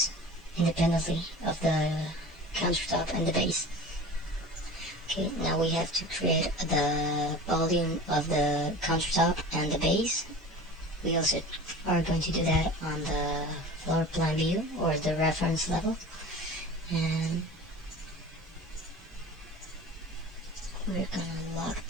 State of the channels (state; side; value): normal; both; correlation 0.37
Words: independently of the countertop and the base. Okay, now we have to create the volume of the countertop and the base. We also are going to do that on the floor plan view or the reference level, and we're gonna lock